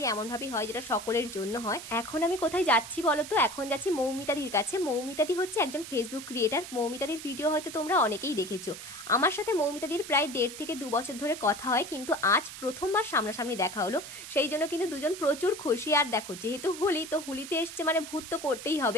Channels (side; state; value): right; noise; hiss, 11 dB below the sound